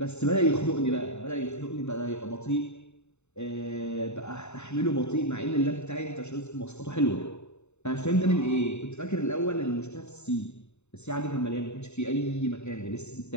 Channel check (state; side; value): late; right; 0.82 ms